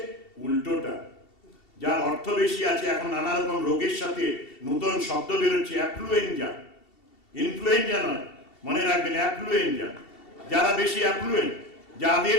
উল্টোটা, যার অর্থ বেশি আছে, এখন নানা রকম রোগের সাথে নতুন শব্দ বেরোচ্ছে, অ্যাফ্লুয়েঞ্জা, ইনফ্লুয়েঞ্জা নয়, মনে রাখবেন অ্যাফ্লুয়েঞ্জা। যারা বেশি অ্যাফ্লুয়েন্ট,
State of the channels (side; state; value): right; late; 2.7 ms